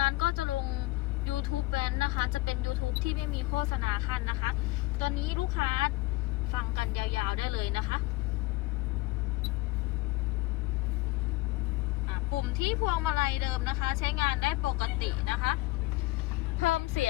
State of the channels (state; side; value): quieter; right; 20.5 dB